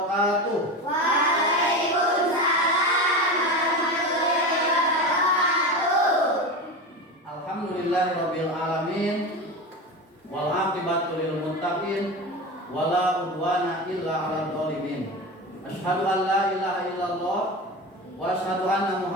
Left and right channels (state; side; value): normal; both; correlation 0.25